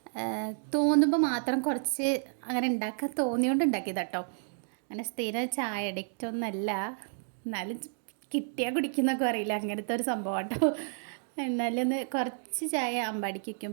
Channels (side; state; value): left; silent; digital silence